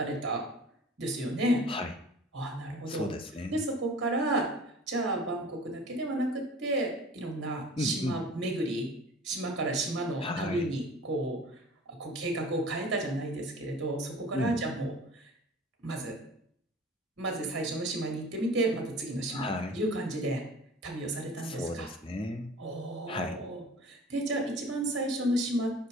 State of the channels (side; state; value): both; normal; correlation 0.43